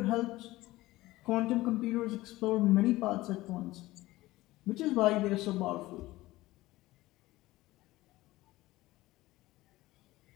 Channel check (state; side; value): quieter; right; 18.1 dB